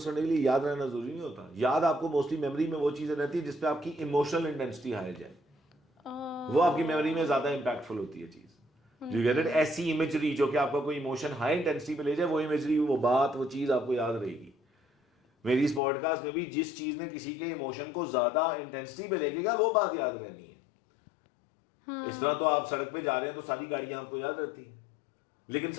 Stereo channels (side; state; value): right; drops out; at 15.8 s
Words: کرنے کے لیے یاد رہنا ضروری نہیں ہوتا. یاد آپ کو موسٹلی میموری میں وہ چیزیں رہتی ہے جس پہ آپ کی ایموشنل انٹینسٹی ہائی جائے, وہ آپ کی میموری میں زیادہ امپیکٹفل ہوتی ہے چیز. You get it. ایسی امیجری جو کہ آپ کا کوئی ایموشن ہائی انٹینسٹی پہ لے جائے, وہ امیجری, وہ بات, وہ چیز آپ کو یاد رہے گی. میری اس پوڈ کاسٹ میں بھی جس چیز نے کسی کے ایموشن کو زیادہ انٹینسٹی پہ لے گا وہ بات یاد رہنی ہے. اس طرح تو آپ سڑک پہ جا رہے ہیں تو ساری گاڑیاں آپ کو یاد رہتی ہیں, لیکن